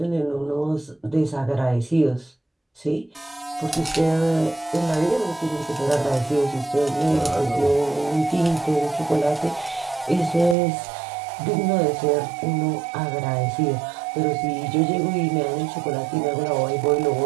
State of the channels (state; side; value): drops out; left; at 10.6 s